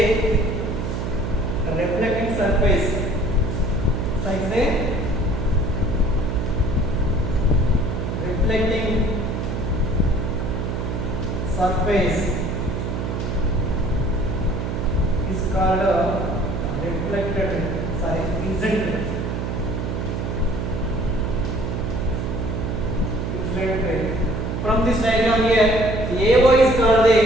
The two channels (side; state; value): right; noise; hum, 2 dB below the sound